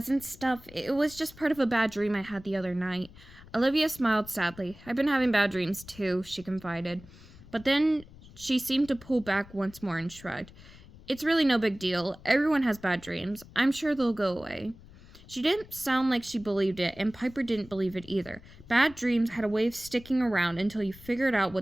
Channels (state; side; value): noise; left; rumble, 21 dB below the sound